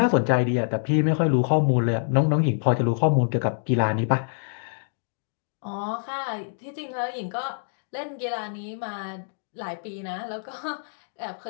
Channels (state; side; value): silent; right; digital silence